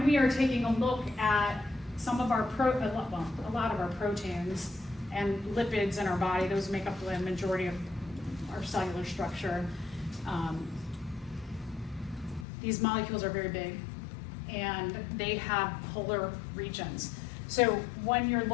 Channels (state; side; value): drops out; right; at 12.5 s